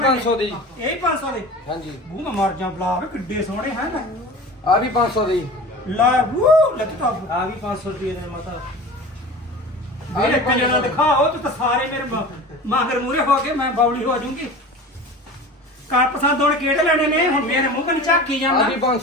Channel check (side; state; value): both; normal; correlation 0.36